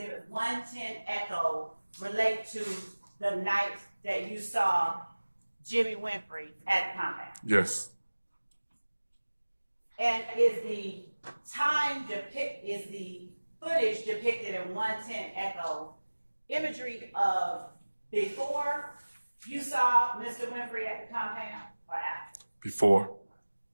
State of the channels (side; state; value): both; inverted; correlation -1.00